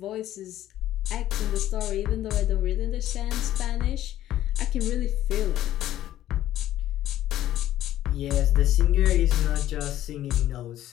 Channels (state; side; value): quieter; right; 13.2 dB